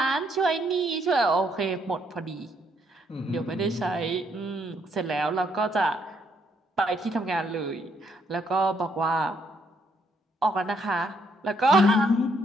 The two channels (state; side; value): normal; both; correlation 0.72